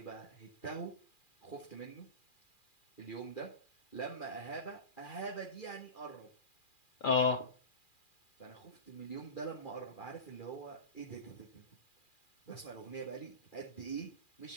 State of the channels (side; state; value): right; late; 2.4 ms